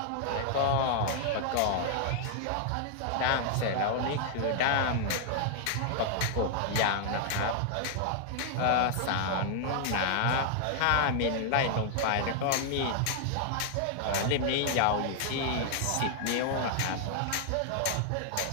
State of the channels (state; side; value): different; both; correlation -0.01